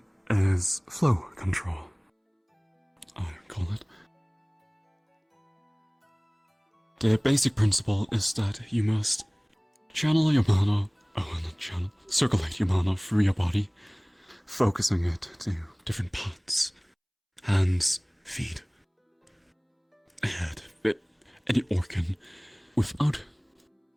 is flow control, I call it. The basic principle is that you must channel your mana, not channel, circulate your mana through your body, focusing it to different parts, hands, feet, head, any organ, without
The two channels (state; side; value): identical; both; correlation 1.00